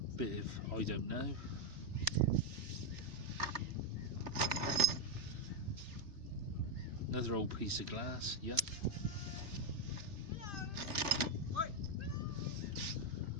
bit of I don't know. Another old piece of glass, yuck.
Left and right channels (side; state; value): left; late; 3.4 ms